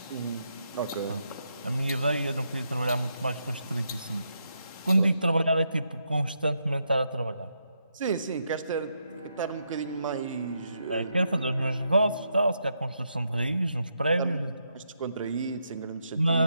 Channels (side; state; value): both; inverted; correlation -0.81